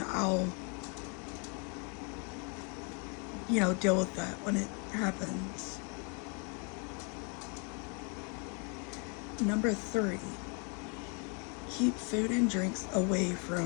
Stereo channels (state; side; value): quieter; right; 35.9 dB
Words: I'll, deal with that when it happens. Number 3, keep food and drinks away